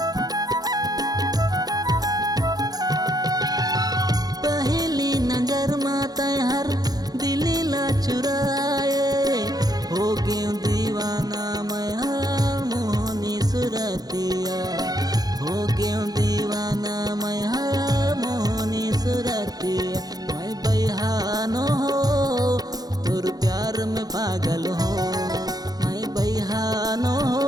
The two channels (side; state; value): left; late; 0.19 ms